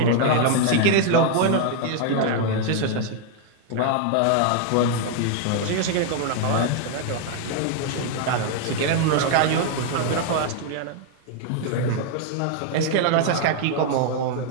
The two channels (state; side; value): different; both; correlation 0.00